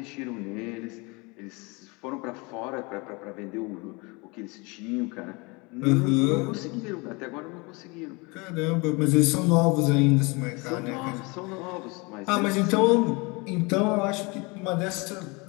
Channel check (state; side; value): quieter; right; 27.6 dB